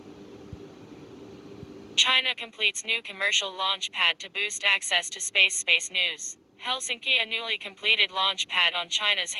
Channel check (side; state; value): both; identical; correlation 1.00